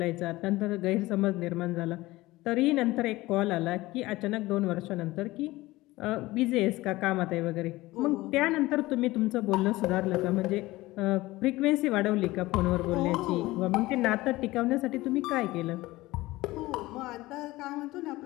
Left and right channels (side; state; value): right; quieter; 18.9 dB